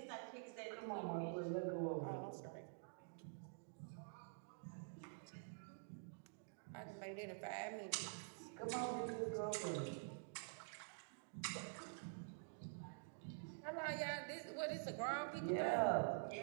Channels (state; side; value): silent; left; digital silence